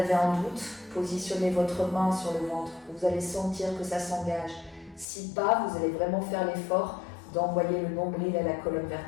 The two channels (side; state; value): right; drops out; at 5.1 s